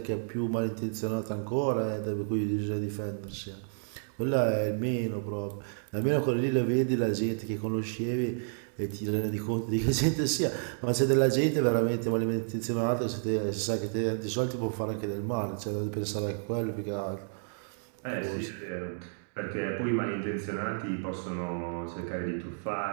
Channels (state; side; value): silent; left; digital silence